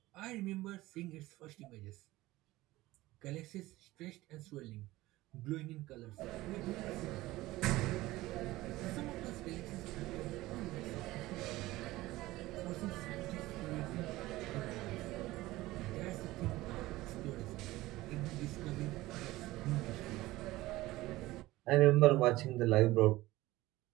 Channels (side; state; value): left; quieter; 18.0 dB